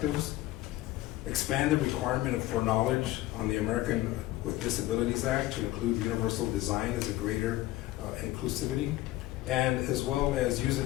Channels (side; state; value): right; quieter; 16.6 dB